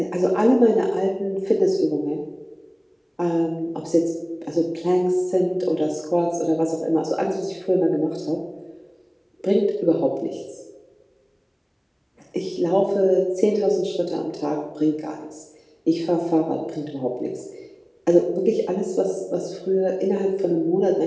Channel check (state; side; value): identical; both; correlation 1.00